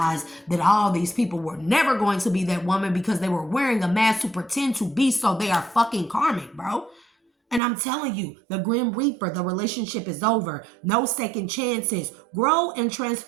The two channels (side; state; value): left; drops out; at 7.6 s